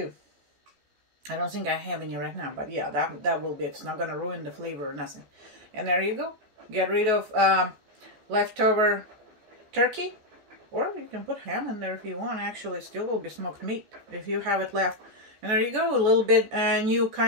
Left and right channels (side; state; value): left; late; 14 ms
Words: I don't think I have any right now, but yeah, that will be. It's not going to ruin the flavor or nothing. And there you go. Get rid of leftover turkey, or you can put ham in there if you want. Actually, it still will be smoked meat if you have it left. And there you go, a little bit new